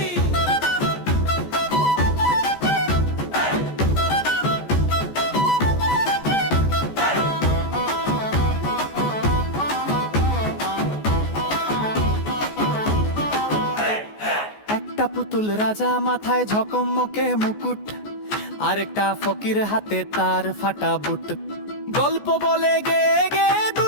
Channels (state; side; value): late; right; 14 ms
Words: একটা পুতুল রাজা, মাথায় ঝকমকে মুকুট, আরেকটা ফকির হাতে তার ফাটা বুট। গল্প বলে গে গে